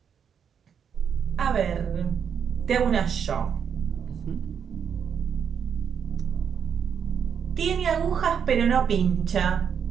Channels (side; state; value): left; quieter; 7.5 dB